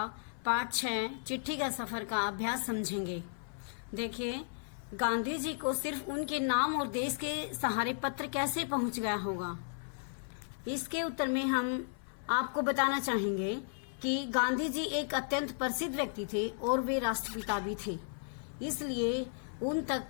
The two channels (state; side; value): silent; right; 55 dB below the other